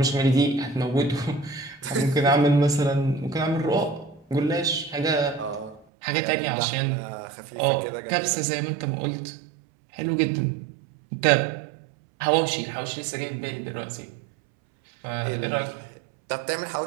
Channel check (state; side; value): drops out; left; at 5.9 s